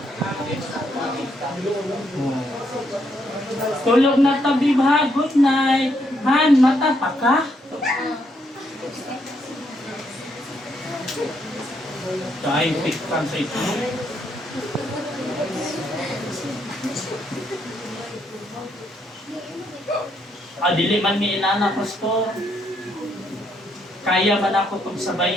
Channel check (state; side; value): normal; both; correlation 0.75